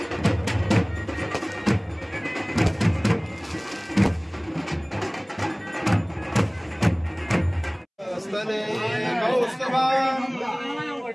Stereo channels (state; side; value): identical; both; correlation 1.00